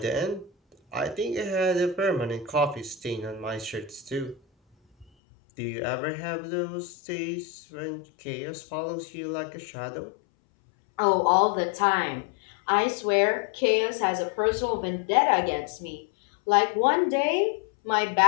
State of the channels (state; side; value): drops out; right; at 5.1 s